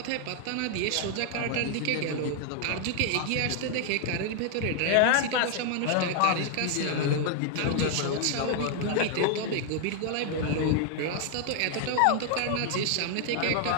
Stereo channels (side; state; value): both; different; correlation 0.00